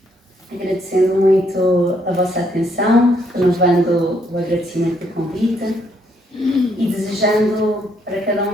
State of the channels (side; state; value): both; normal; correlation 0.71